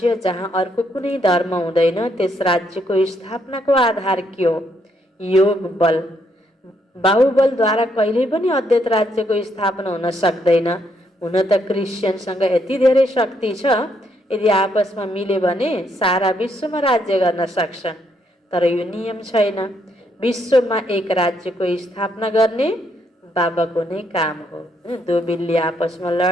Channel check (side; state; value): both; normal; correlation 0.74